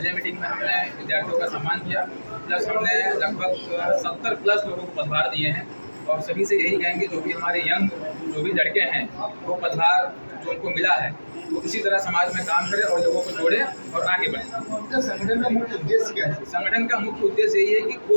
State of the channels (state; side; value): inverted; both; correlation -1.00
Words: मीटिंग में हमने विद्यार्थियों का सम्मान किया, प्लस हमने लगभग 70+ लोगों को पदभार दिए हैं। और सभी से यही कहेंगे जो भी हमारे यंग जो भी लड़के हैं वो पदभार जो उनको मिला है वो इसी तरह समाज में काम करें और लोगों को जोड़े और आगे बढ़े। संगठन का मुख्य उद्देश्य क्या है? संगठन का मुख्य उद्देश्य यही है कि